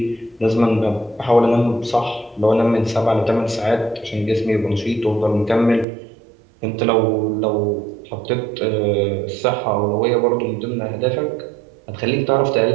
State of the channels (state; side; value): drops out; left; at 5.9 s